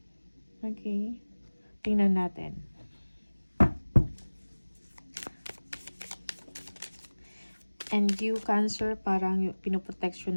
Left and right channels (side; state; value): both; inverted; correlation -1.00